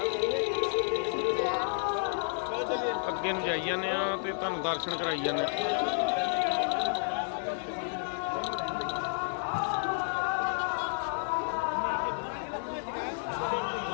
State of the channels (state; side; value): silent; right; digital silence